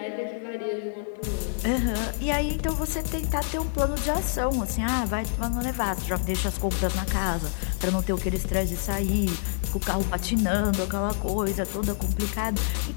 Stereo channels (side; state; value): right; silent; digital silence